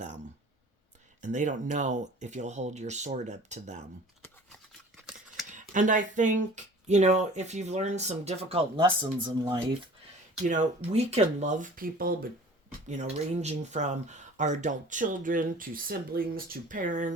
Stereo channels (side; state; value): both; normal; correlation 0.46